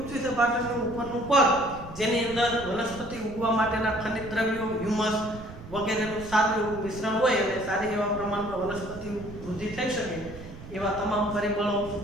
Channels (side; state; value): right; noise; rumble, 14 dB below the sound